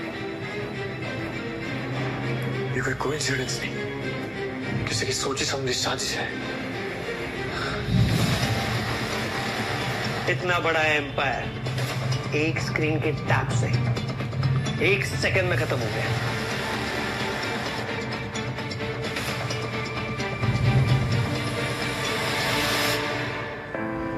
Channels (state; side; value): identical; both; correlation 1.00